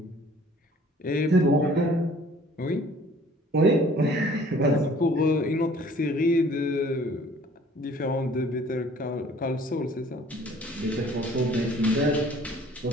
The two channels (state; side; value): normal; both; correlation 0.54